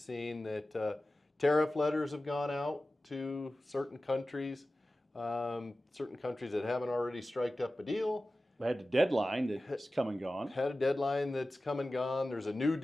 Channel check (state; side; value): normal; both; correlation 0.95